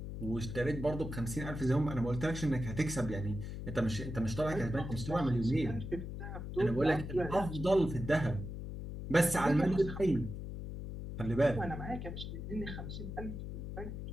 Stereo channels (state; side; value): noise; left; hum, 7 dB below the sound